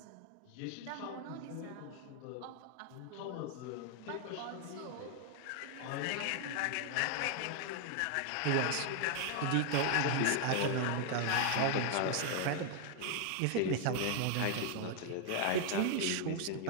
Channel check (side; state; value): both; different; correlation 0.00